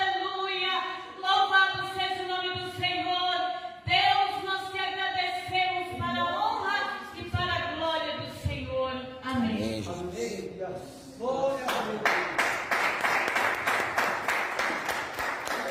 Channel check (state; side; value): identical; both; correlation 1.00